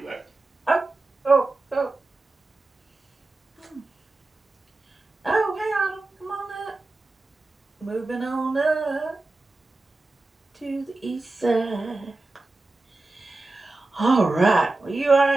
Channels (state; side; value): quieter; left; 3.1 dB